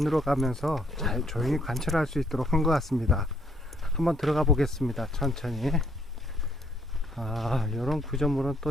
가면서 잘 조용히 관찰할 수 있도록 한 것 같습니다. 한번 들어가 보겠습니다. 천천히. 아, 이런 구조물은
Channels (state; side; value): normal; both; correlation 0.68